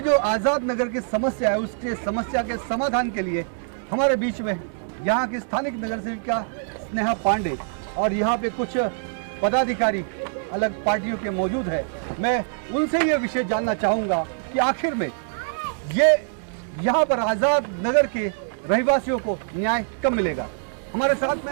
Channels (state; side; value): silent; left; digital silence